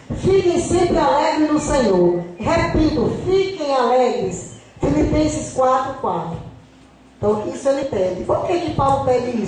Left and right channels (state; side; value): identical; both; correlation 1.00